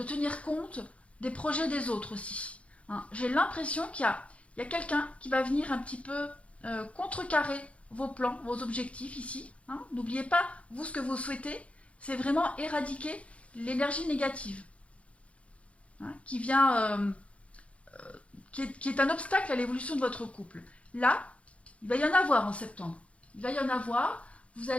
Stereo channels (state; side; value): late; right; 0.063 ms